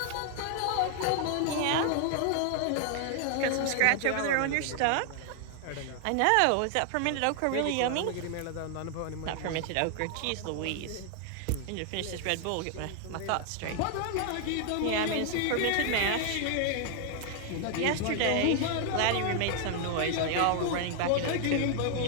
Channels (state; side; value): different; both; correlation 0.00